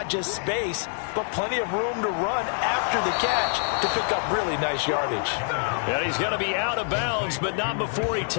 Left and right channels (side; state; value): right; silent; 61 dB below the other